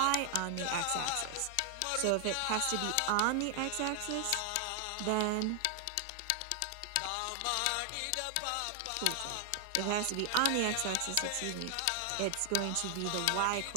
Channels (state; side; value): different; both; correlation 0.00